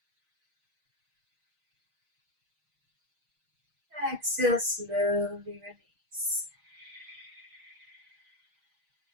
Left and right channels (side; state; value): left; late; 6.4 ms